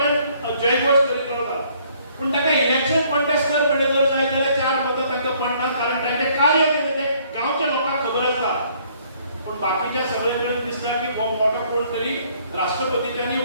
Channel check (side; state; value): both; inverted; correlation -0.63